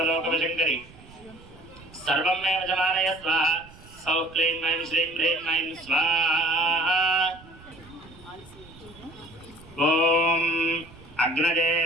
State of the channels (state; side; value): noise; right; rumble, 22 dB below the sound